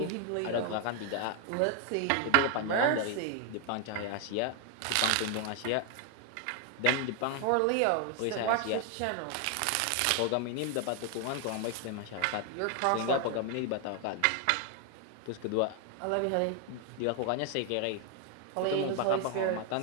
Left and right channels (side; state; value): both; different; correlation 0.00